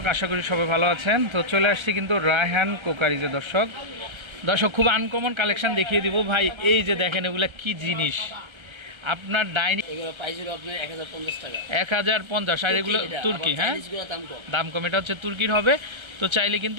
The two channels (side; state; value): left; late; 1.3 ms